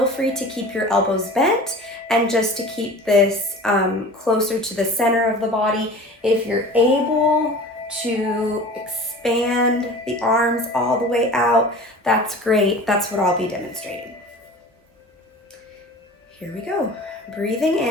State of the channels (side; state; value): both; normal; correlation 0.39